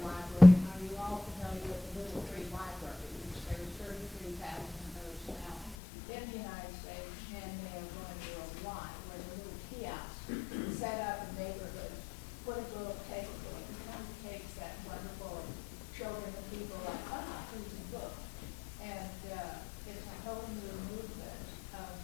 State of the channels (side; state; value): right; drops out; at 5.8 s